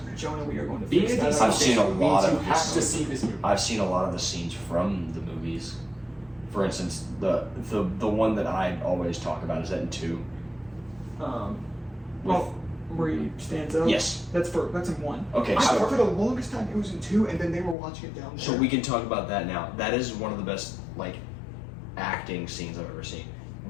Jonah, we are going to Being a fix DC that. I've seen a fan lot means of you have this. to see this movie. I've seen a lot of the scenes from the movies. For instance, the one that I always talk about is that in 2. Well, where he stands up. Yes. That's in 1. Okay, I so- thought for the longest time it was in 2, and then they were watching it down there. So we can talk about that now. That is one of the best like acting scenes I've ever seen,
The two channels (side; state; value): right; drops out; at 17.8 s